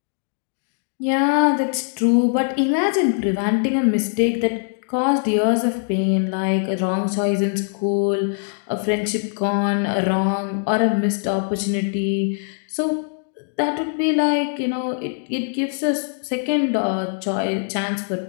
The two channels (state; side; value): silent; right; digital silence